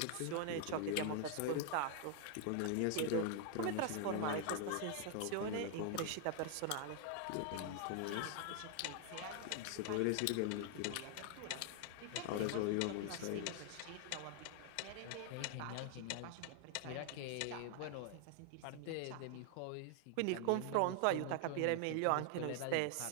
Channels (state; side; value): different; both; correlation 0.00